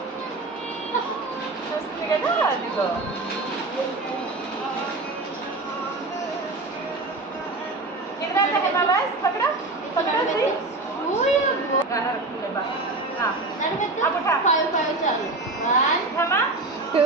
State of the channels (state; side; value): quieter; left; 3.2 dB